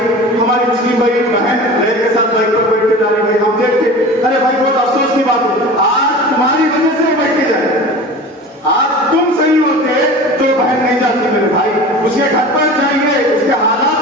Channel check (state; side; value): normal; both; correlation 0.36